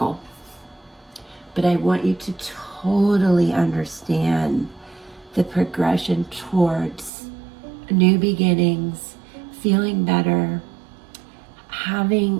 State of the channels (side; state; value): left; drops out; at 7.1 s